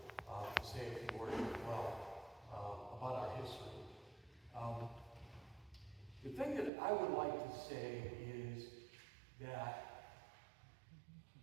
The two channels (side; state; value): left; drops out; at 6.7 s